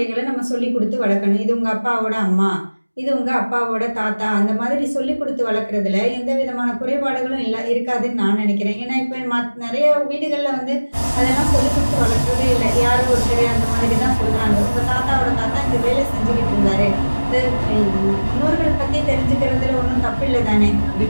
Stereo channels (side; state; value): both; inverted; correlation -1.00